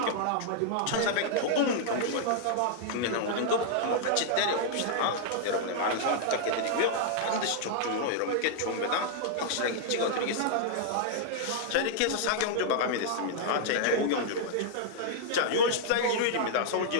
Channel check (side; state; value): both; different; correlation -0.01